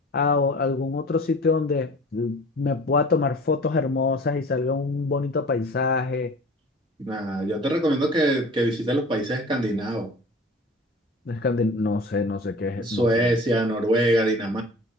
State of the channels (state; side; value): normal; both; correlation 0.43